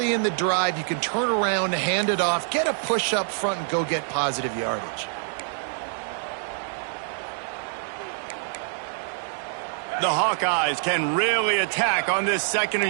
in the drive you can turn around, hand it off, get a push up front, and go get positive yardage. The Hawkeyes can really attack on this second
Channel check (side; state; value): left; silent; 58 dB below the other